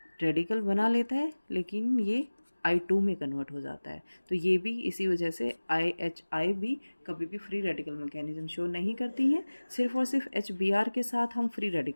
रेडिकल बना लेता है लेकिन ये I2 में कन्वर्ट हो जाता है। तो ये भी इसी वजह से IHI भी कभी भी फ्री रेडिकल मैकेनिज्म शो नहीं करती हैं, सिर्फ और सिर्फ HBr के साथ हम फ्री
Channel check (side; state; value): both; inverted; correlation -1.00